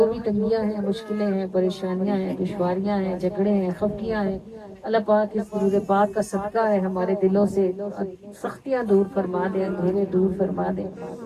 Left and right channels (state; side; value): identical; both; correlation 1.00